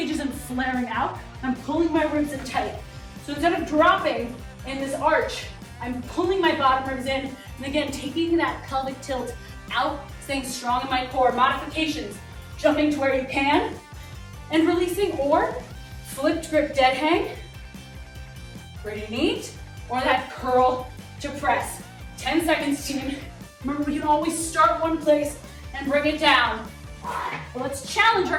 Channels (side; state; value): both; identical; correlation 1.00